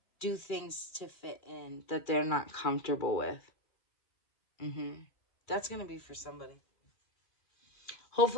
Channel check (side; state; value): right; late; 2.4 ms